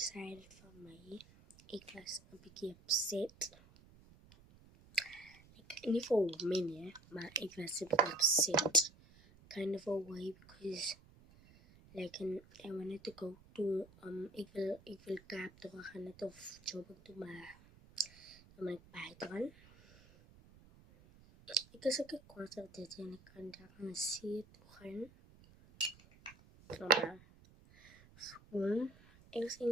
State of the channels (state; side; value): noise; right; rumble, 24 dB below the sound